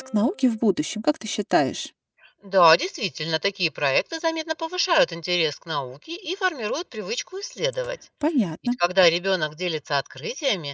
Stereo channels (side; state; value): both; identical; correlation 1.00